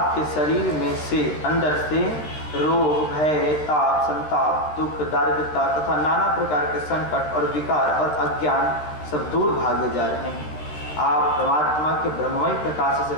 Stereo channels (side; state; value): right; late; 13 ms